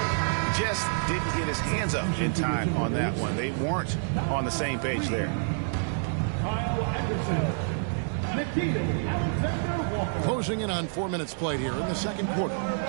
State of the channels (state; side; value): silent; left; 59 dB below the other